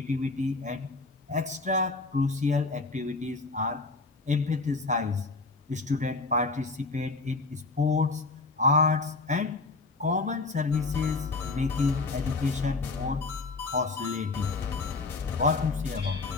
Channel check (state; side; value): quieter; right; 3.6 dB